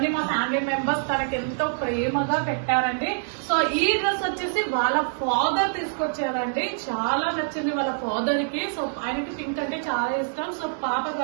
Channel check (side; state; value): left; silent; 59 dB below the other